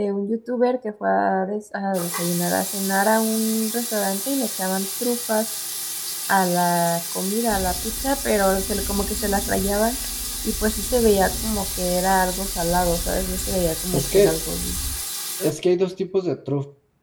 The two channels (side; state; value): both; identical; correlation 1.00